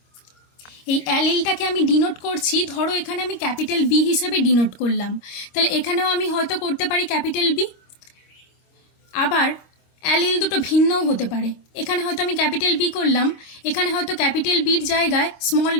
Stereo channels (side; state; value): right; late; 25 ms